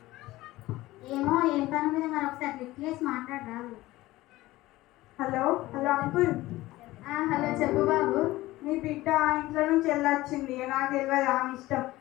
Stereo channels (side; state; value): right; quieter; 17.8 dB